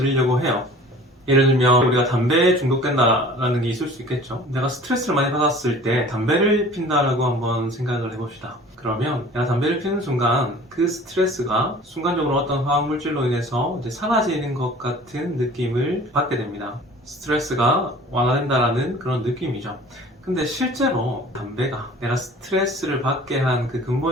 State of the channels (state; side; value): normal; both; correlation 0.46